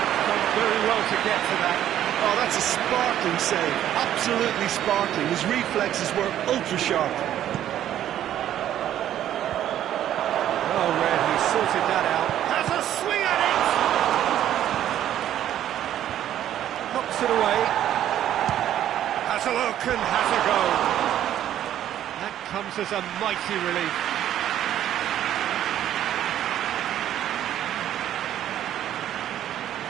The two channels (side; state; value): left; quieter; 11.5 dB